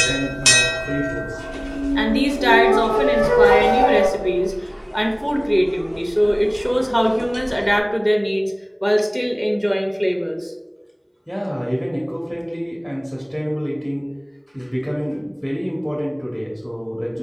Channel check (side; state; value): both; identical; correlation 1.00